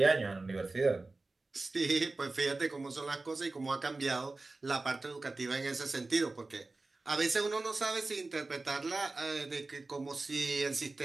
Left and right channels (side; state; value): left; quieter; 3.4 dB